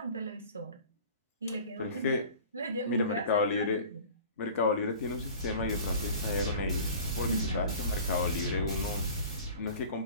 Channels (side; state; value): both; inverted; correlation -0.43